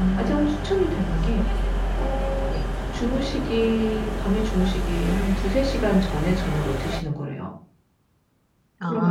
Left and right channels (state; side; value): identical; both; correlation 1.00